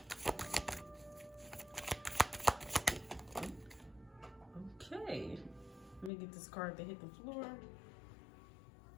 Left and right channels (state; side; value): drops out; right; at 6.1 s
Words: Okay, let me get this card to hit the floor.